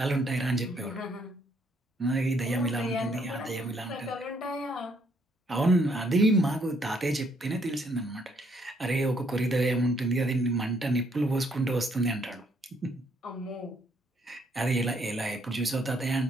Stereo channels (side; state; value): both; normal; correlation 0.69